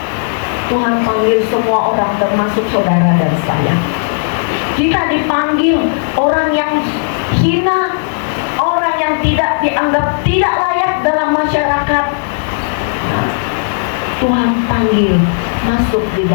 Tuhan panggil semua orang, termasuk saudara dan saya. Kita dipanggil orang yang hina, orang dianggap tidak layak dalam masyarakat, nah, Tuhan panggil masuk di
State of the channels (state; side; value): silent; right; digital silence